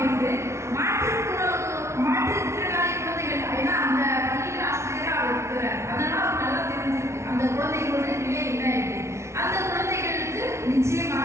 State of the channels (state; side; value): late; left; 0.13 ms